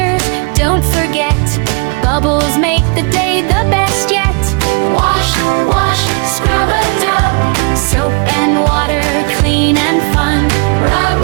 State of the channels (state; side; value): quieter; left; 34.8 dB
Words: don't forget. Bubbles make the day the best yet. Wash, wash, scrub-a-dub. Soap and water, clean and fun. Rub,